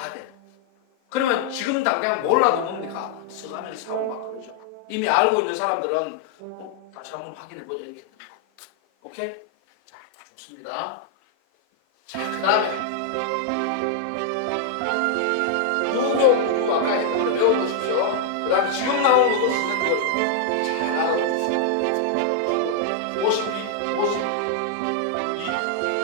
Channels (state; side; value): different; both; correlation -0.01